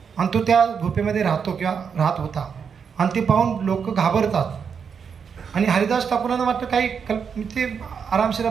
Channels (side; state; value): left; quieter; 6.6 dB